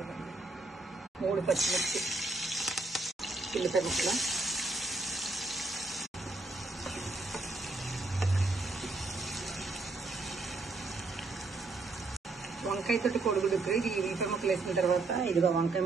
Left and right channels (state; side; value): quieter; left; 3.3 dB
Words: 3 పచ్చిమిర్చి, ఉల్లిపాయ ముక్కలు, వంకాయతోటి కోడిగుడ్డు ఉక్కురు. ఇది ఉల్లిపాయ ముక్కలు వేసిన తర్వాత ఇదిగో వంకాయ